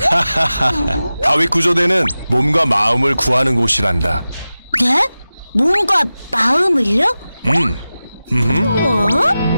다윗 구조대는 몸과 마음을 구하는 곳이란다. 네? 몸과 마음을요?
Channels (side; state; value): both; inverted; correlation -0.95